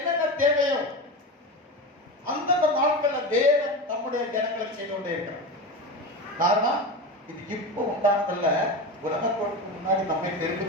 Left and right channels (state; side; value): normal; both; correlation 0.23